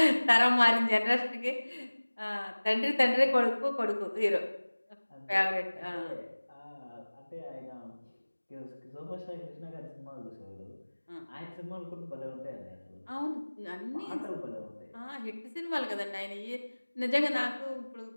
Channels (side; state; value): both; inverted; correlation -1.00